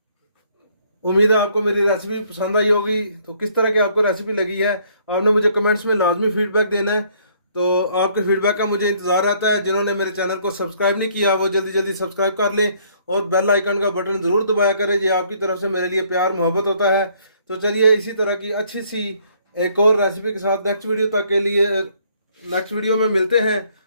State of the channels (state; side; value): inverted; both; correlation -0.64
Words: उम्मीद है आपको मेरी रेसिपी पसंद आई होगी। तो किस तरह की आपको रेसिपी लगी है आपने मुझे कमेंट्स में लाजमी फीडबैक देना है। तो आपके फीडबैक का मुझे इंतज़ार रहता है। जिन्होंने मेरे चैनल को सब्सक्राइब नहीं किया वो जल्दी जल्दी सब्सक्राइब कर लें और बेल आइकन का बटन ज़रूर दबाया करें। ये आपकी तरफ से मेरे लिए प्यार मोहब्बत होता है। तो चलिए इसी तरह की अच्छी सी एक और रेसिपी के साथ नेक्स्ट वीडियो में मिलते हैं।